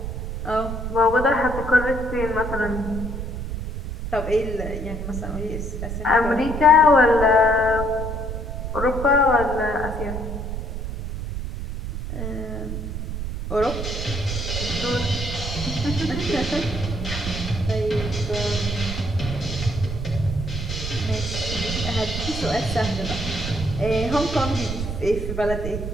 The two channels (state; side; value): noise; right; rumble, 5 dB below the sound